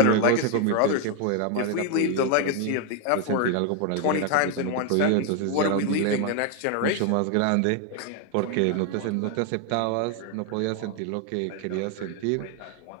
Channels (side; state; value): both; different; correlation 0.01